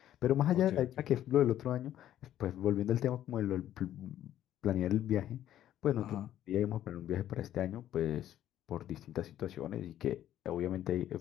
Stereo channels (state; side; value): quieter; right; 11.9 dB